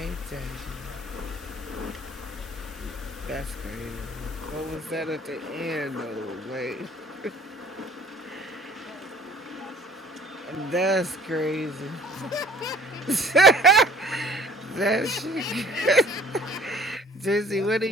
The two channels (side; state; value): both; normal; correlation 0.53